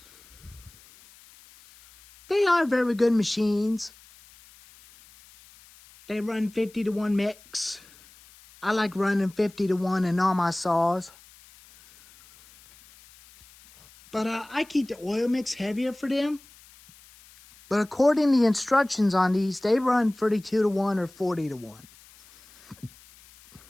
They are very good machines. They run 50-to-1 mix. I like running 50-to-1 in all my saws. But I keep the oil mix heavier for them. But according to the instructions on these, they run 32 to 1 or 40 to 1.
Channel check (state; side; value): noise; left; hiss, 25 dB below the sound